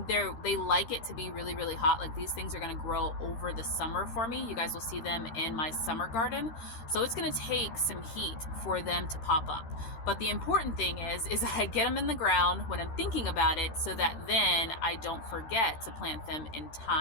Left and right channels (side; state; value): right; late; 13 ms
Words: they like it to be really, really hot. Like these things are going to grow over the summer for me. You guys will see them in my summer garden. So it's going to take some heat for them to pop up. But the important thing is I get them in the ground when I'm thinking about it so that then I don't forget to plant them in